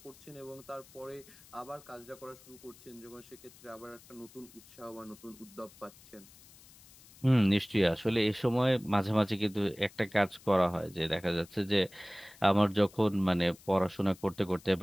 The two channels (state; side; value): noise; left; hiss, 23 dB below the sound